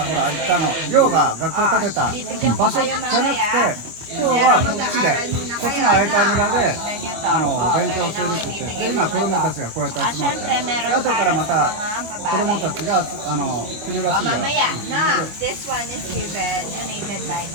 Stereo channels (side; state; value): left; late; 25 ms